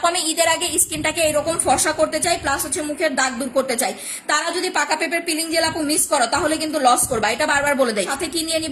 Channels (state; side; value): identical; both; correlation 1.00